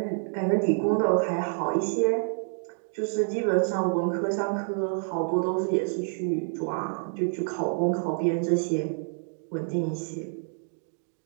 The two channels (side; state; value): left; silent; 58 dB below the other